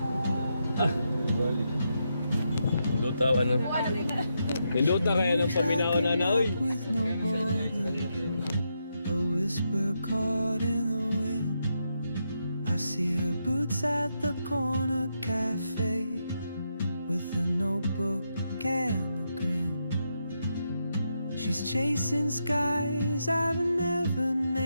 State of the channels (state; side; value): inverted; both; correlation -0.82